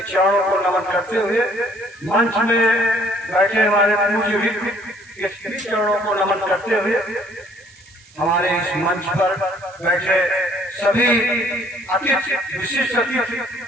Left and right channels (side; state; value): right; noise; hiss, 26 dB below the sound